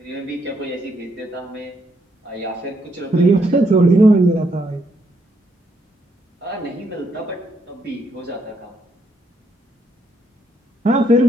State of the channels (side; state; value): both; normal; correlation 0.75